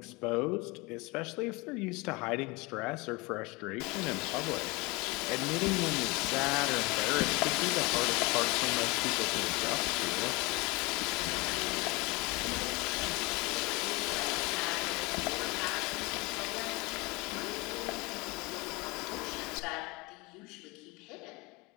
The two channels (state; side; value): quieter; right; 25.3 dB